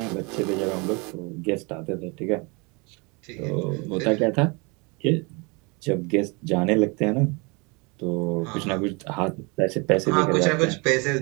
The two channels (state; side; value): quieter; left; 29.3 dB